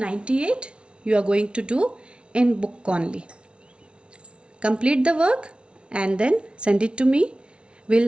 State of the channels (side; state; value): left; late; 0.058 ms